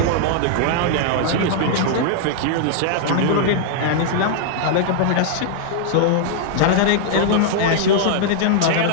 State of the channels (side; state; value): both; different; correlation -0.01